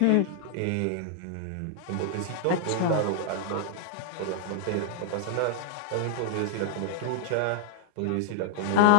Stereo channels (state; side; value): different; both; correlation -0.01